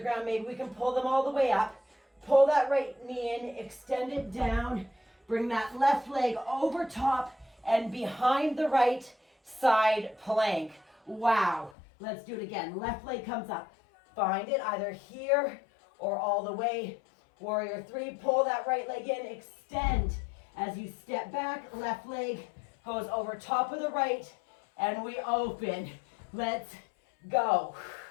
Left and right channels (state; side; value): drops out; right; at 11.8 s